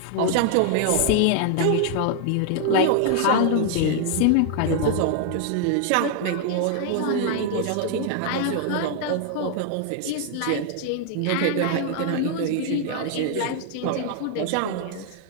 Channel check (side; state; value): both; different; correlation 0.00